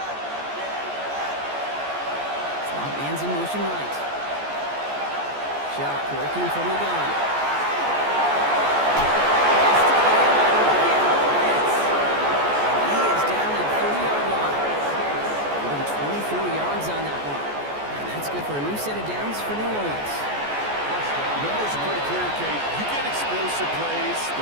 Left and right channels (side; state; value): left; late; 14 ms